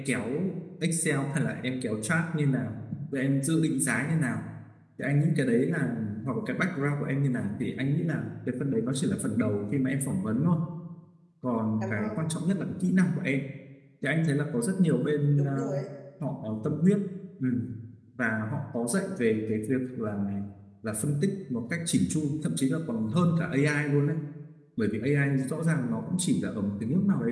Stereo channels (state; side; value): identical; both; correlation 1.00